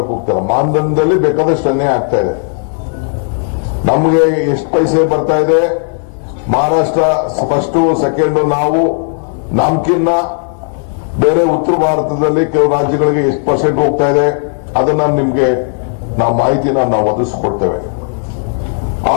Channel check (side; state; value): right; silent; 64 dB below the other